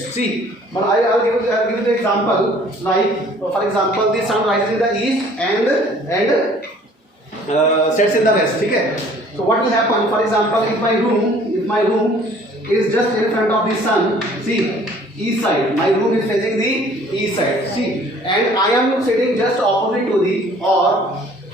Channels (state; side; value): normal; both; correlation 0.54